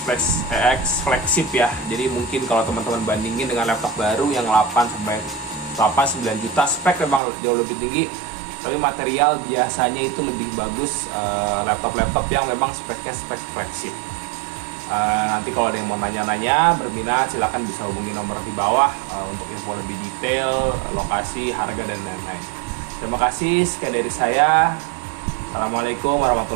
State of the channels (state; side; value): drops out; left; at 7.2 s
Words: flagship ya. Jadi mungkin kalau teman-teman bandingin dengan laptop baru yang 8-9 juta, spek memang jauh lebih tinggi, tapi material biasanya itu lebih bagus laptop-laptop yang memang speknya spek flagship. Nanti kalau ada yang mau nanya-nanya, berminat, silahkan bisa hubungi nomor di bawah untuk info lebih detail, lokasi, harga, dan lain-lain. Terima kasih, sekian dari saya. Assalamualaikum